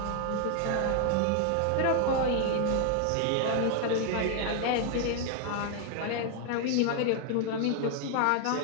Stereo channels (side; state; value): both; different; correlation 0.00